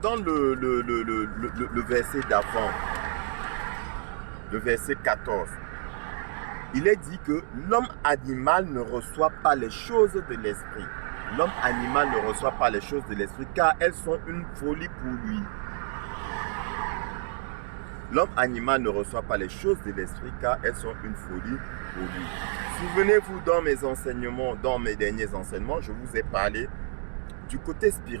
le verset d'avant, le verset 14, il est dit que l'homme animal ne reçoit pas les choses de l'esprit. L'homme animal ne reçoit pas les choses de l'esprit car elles sont une folie pour lui. L'homme animal ne reçoit pas les choses de l'esprit car elles sont une folie pour lui. Souvenez-vous dans mes enseignements, dans mes derniers enseignements, je vous ai parlé du côté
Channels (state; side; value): silent; left; 59 dB below the other